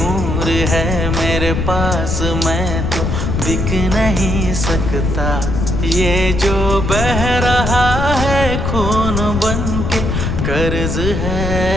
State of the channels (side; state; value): left; noise; rumble, 1 dB below the sound